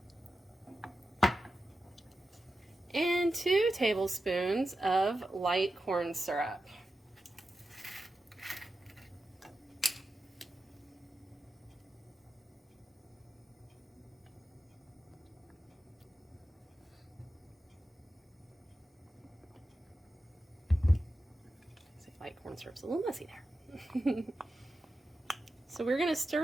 and 2 tablespoons of light corn syrup. Light corn syrup's a little messy there. So we're going to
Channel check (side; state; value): both; normal; correlation 0.91